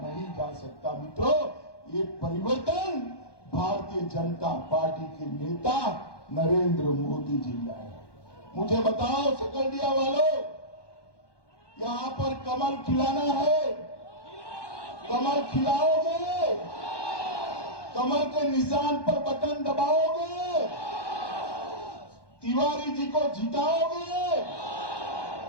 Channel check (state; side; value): late; right; 1.2 ms